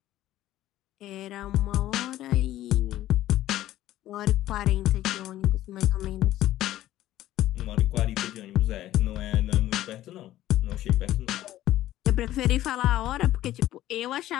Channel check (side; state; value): right; quieter; 14.1 dB